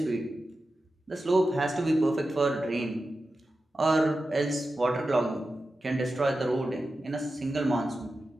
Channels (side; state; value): both; normal; correlation 0.92